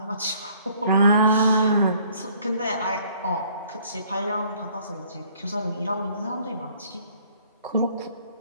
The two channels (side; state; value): both; inverted; correlation -0.60